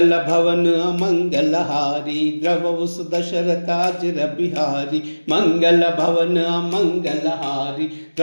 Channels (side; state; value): both; inverted; correlation -1.00